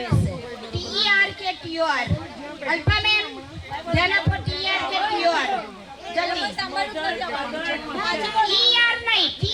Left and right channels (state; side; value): identical; both; correlation 1.00